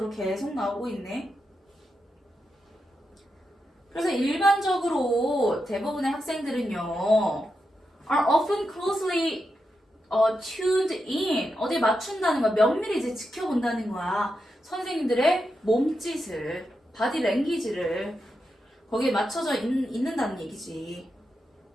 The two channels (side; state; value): both; normal; correlation 0.87